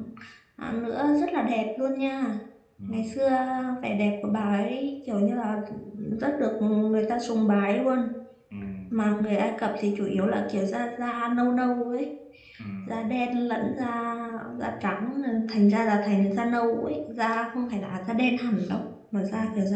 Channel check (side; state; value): both; identical; correlation 1.00